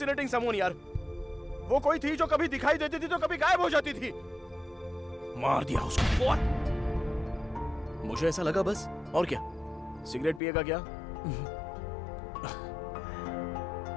someone यार। वो कोई थी जो कभी दिखाई देती थी तो कभी गायब हो जाती थी। मार दिया उसको। What? मुझे ऐसा लगा बस, और क्या? सिगरेट पिएगा क्या?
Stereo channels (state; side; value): drops out; right; at 10.4 s